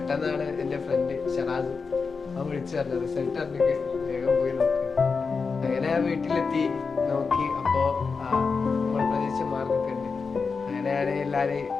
എന്റെ ഫ്രണ്ട് ഷറാസ് അവൻ വിളിച്ചു പറഞ്ഞത് റിസൾട്ട് അറിഞ്ഞൊക്കെ വേഗം പോയി നോക്കി. അങ്ങനെ ആ വീട്ടിലെത്തി നോക്കി. അപ്പോ നമ്മൾ പ്രതീക്ഷിച്ച മാർക്കൊക്കെ ഉണ്ട്. അങ്ങനെയാണ് എല്ലാരെയും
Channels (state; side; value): quieter; right; 4.9 dB